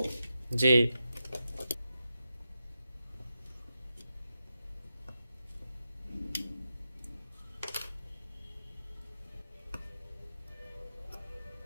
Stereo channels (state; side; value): inverted; both; correlation -0.89